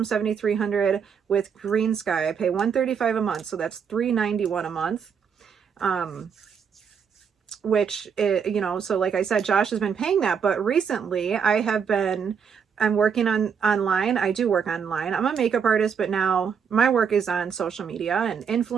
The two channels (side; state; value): left; quieter; 6.9 dB